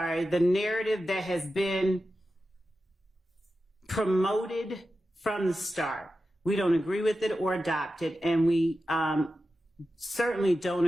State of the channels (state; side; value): normal; both; correlation 0.92